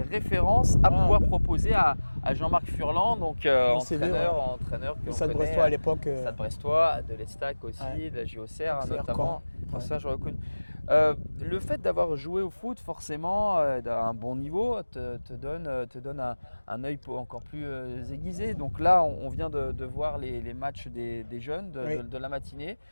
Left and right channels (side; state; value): both; inverted; correlation -1.00